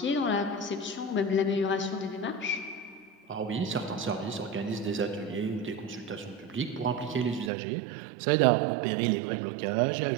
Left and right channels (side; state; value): left; drops out; at 7.5 s